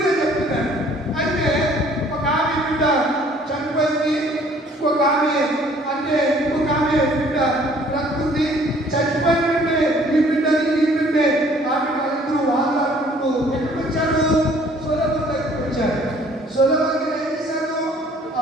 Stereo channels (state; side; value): normal; both; correlation 0.57